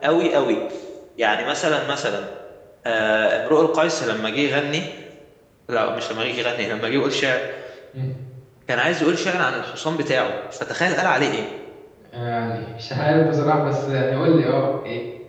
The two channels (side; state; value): both; identical; correlation 1.00